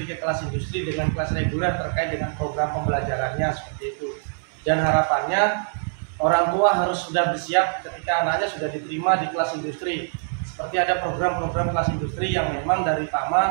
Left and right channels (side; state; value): left; silent; digital silence